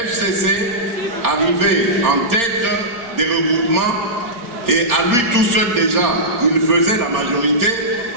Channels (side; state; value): left; late; 4.3 ms